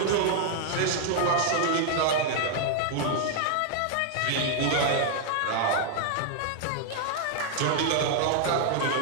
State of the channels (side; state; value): both; different; correlation 0.00